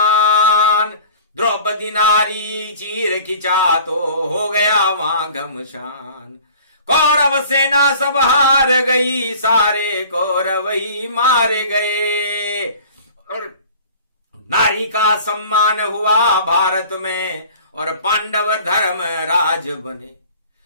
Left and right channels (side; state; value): both; inverted; correlation -0.46